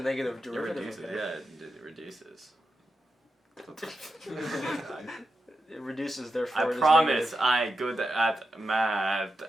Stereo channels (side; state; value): both; normal; correlation 0.88